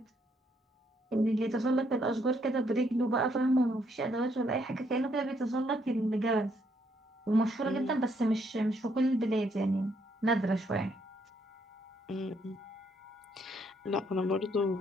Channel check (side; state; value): both; normal; correlation 0.72